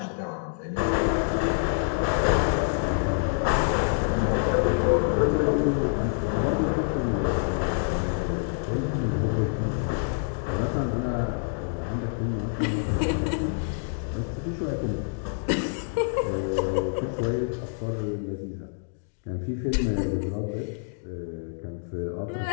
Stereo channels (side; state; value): right; silent; digital silence